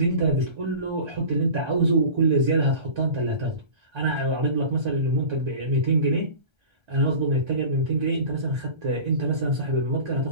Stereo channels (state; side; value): late; left; 1.3 ms